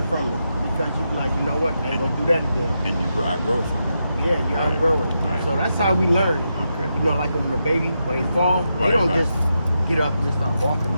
from it. Because you be like, you know what, I ain't gonna do that again. And I grow from it. Yeah, you outgrow it. Right. So that's how we learn. Okay. You know, like when a baby, when they fall, they don't just get up and just start walking.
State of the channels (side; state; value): both; inverted; correlation -0.86